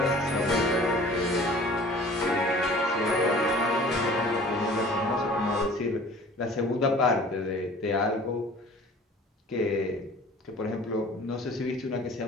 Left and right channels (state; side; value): normal; both; correlation 0.47